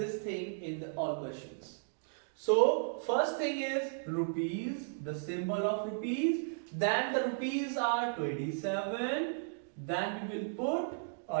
thing in the all questions. So first thing is rupees, the symbol of rupees. Then the rupees are 27. Then we will put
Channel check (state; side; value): silent; left; digital silence